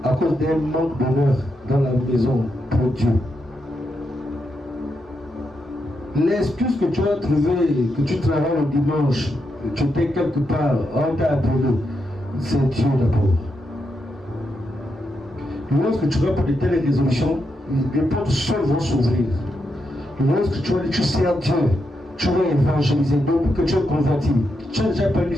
à cause d'un manque d'honneur dans la maison pour Dieu. L'excuse que tu as trouvée, que tu travailles le dimanche, que tu étais quelque part, on t'a appelé, c'est Dieu d'abord. Lorsque tu vas pour de telles résolutions, les portes seules vont s'ouvrir. Lorsque tu vas dire, tu sers Dieu, tu vas évangéliser, donc que tu es converti, tu as déjà parlé du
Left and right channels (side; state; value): both; normal; correlation 0.83